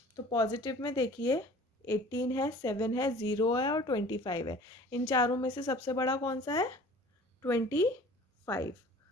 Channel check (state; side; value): normal; both; correlation 0.47